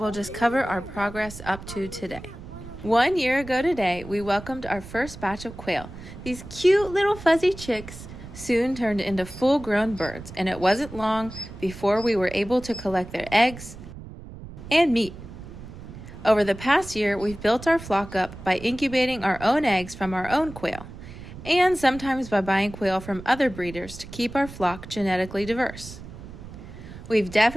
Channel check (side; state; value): right; noise; rumble, 14 dB below the sound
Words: just cover our progress up to today. 1 year ago today, we welcomed our first batch of quail. These cute little fuzzy chicks soon turned into full-grown birds, and it wasn't long before we were able to collect their eggs and meat. Over the past year, we've built our flock up by incubating our own eggs from our own quail, and sometimes by buying quail from other breeders to keep our flock genetically diverse. We've